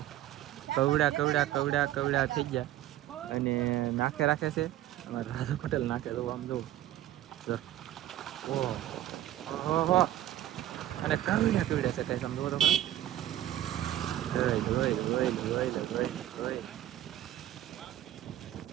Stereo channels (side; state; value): left; quieter; 13.3 dB